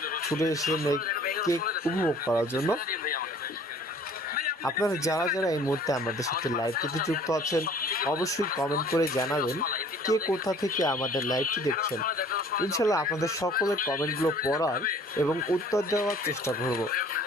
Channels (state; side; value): normal; both; correlation 0.52